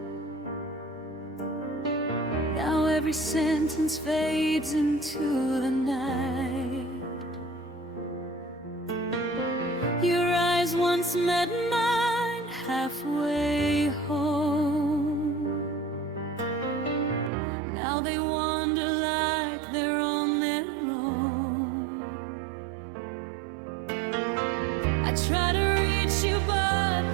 Now every sentence fades into the night. Your eyes once met mine halfway home. Now they wander like they're on their own. I try to reach you, but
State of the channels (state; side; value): drops out; left; at 17.3 s